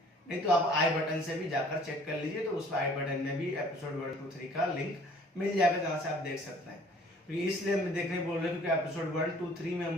नहीं तो आप आई बटन से भी जाकर चेक कर लीजिए, तो उस आई बटन में भी एपिसोड 1, 2, 3 का लिंक मिल जाएगा जहाँ से आप देख सकते हैं। तो इसलिए हम देखने बोल रहे हैं क्योंकि एपिसोड 1, 2, 3 में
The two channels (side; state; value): both; normal; correlation 0.54